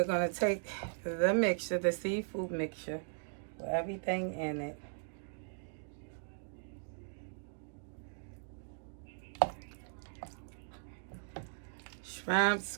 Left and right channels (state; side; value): silent; left; digital silence